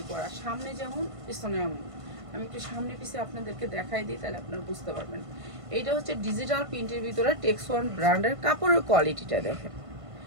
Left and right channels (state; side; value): late; left; 1.5 ms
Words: করা, সামনে যেমন পিছনে এমন। আমি একটু সামনে পিছে আপনাদেরকে দেখাই দিই, তাহলে আপনারা বুঝতে পারবেন। এইটা হচ্ছে ডিজিটাল প্রিন্টের ভিতরে টেক্সওয়ান ব্র্যান্ডের, কাপড়ের কোয়ালিটিটা দেখেন,